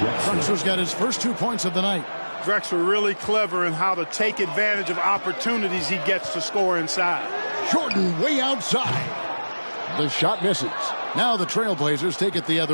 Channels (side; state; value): both; inverted; correlation -1.00